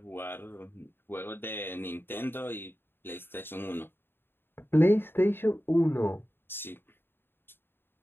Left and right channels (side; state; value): right; late; 0.10 ms